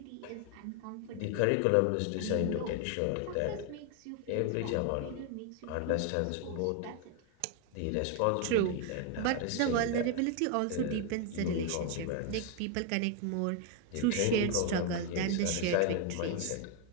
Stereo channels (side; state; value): both; different; correlation 0.01